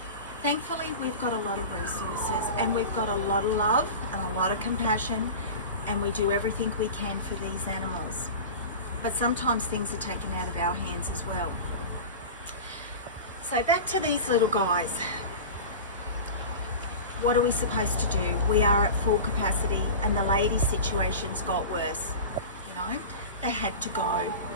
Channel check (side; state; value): both; inverted; correlation -0.31